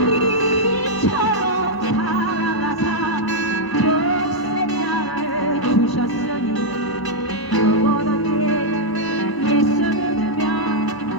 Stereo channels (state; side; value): late; right; 1.0 ms